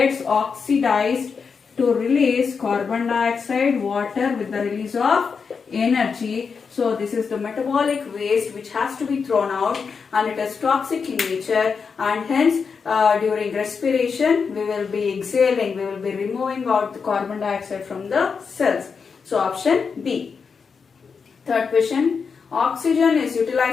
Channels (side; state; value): right; quieter; 5.6 dB